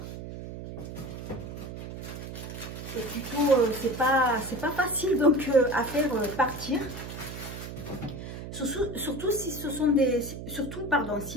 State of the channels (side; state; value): right; noise; hum, 9 dB below the sound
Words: c'est plutôt... c'est pas facile donc à faire partir. Surtout si ce sont des... Surtout, pardon,